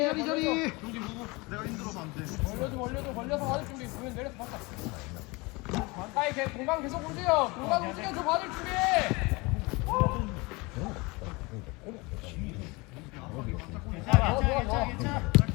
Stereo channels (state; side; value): quieter; right; 25.5 dB